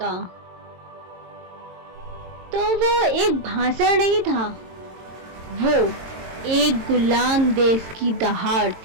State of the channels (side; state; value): left; late; 22 ms